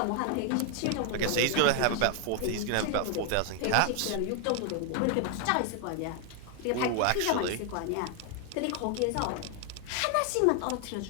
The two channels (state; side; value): different; both; correlation 0.00